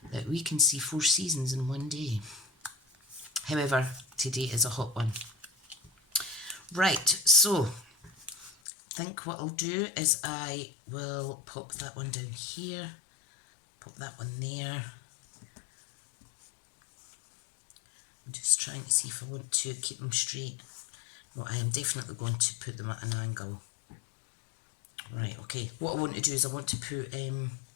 that we can see 4 seasons in one day. However, today is a hot one. Right, so I think what I'll do is I will pop that one down here, pop that one there. I'm just trying to see if I want to keep them straight. No, I am definitely going to put them at an angle. Right, okay. What I want to do is I want to put,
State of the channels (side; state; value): right; drops out; at 8.6 s